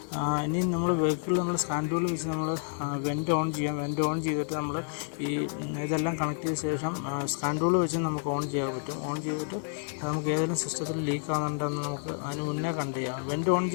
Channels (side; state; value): right; silent; digital silence